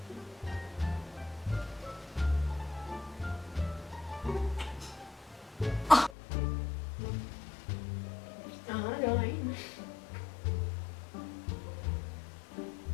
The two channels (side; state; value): right; drops out; at 6.2 s